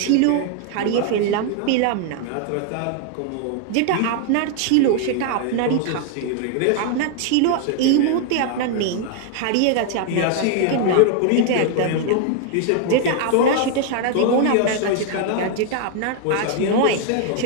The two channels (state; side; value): different; both; correlation 0.00